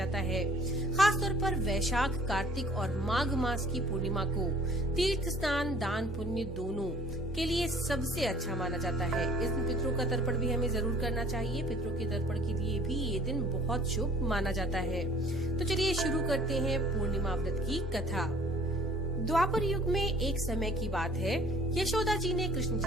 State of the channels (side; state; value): both; normal; correlation 0.53